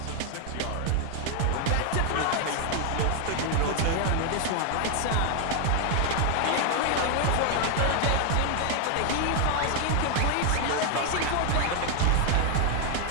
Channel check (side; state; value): both; different; correlation 0.00